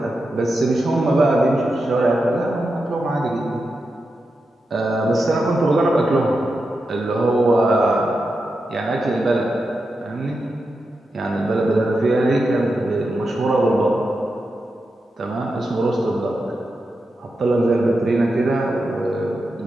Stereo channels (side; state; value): both; normal; correlation 0.88